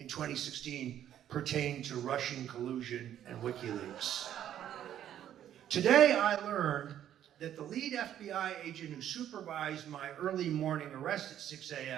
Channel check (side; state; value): left; quieter; 10.9 dB